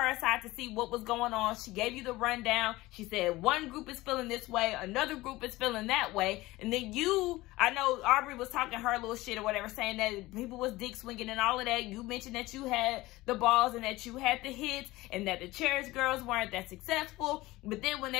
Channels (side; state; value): right; quieter; 19.1 dB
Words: aside to see what was going on. She gave you the rundown. She said one group is feeling this way, another group is feeling that way. And then you, I know Aubrey was talking her little shit or whatever, saying that people was dick swinging and all of that. You mentioned that you had the balls and that you had the hits and that the Cherish girls weren't that successful. But then when